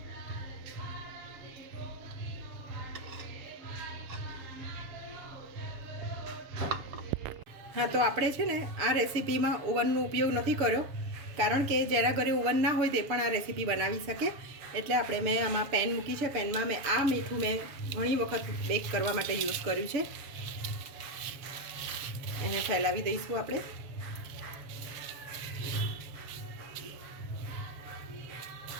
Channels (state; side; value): late; left; 7.2 ms